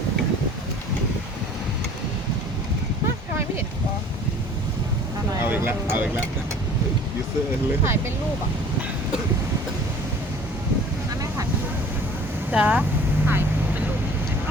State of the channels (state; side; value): normal; both; correlation 0.48